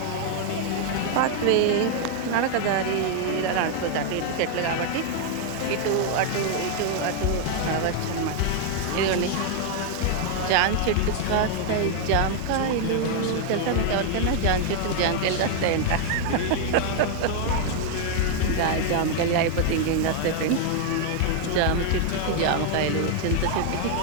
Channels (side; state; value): both; different; correlation 0.00